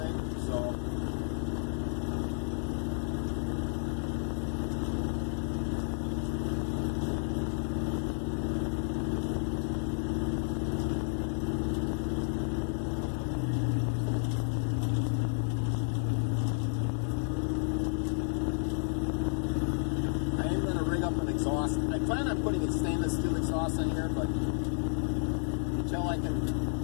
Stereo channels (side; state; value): right; silent; digital silence